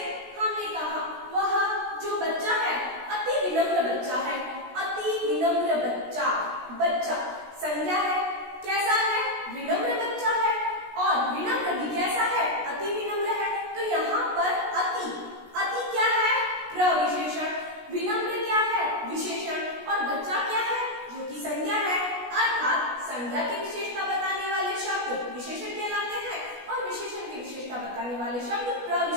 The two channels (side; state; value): left; late; 16 ms